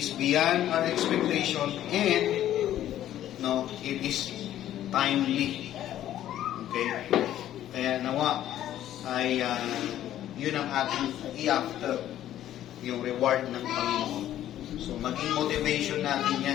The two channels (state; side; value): quieter; right; 12.2 dB